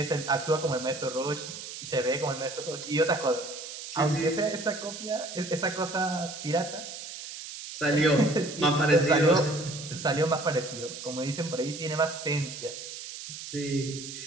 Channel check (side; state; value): right; noise; hiss, 10 dB below the sound